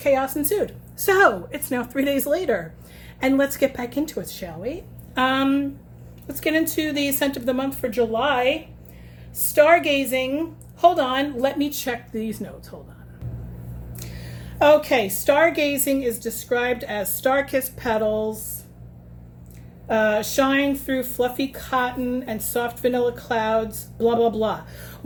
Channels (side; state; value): both; identical; correlation 1.00